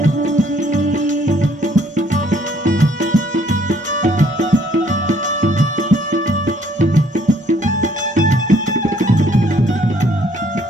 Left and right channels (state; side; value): normal; both; correlation 0.63